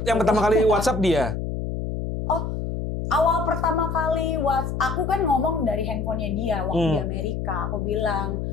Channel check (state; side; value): noise; left; hum, 4 dB below the sound